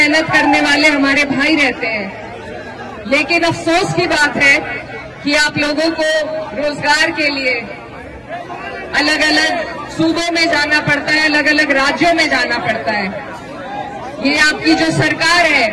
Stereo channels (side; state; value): both; identical; correlation 1.00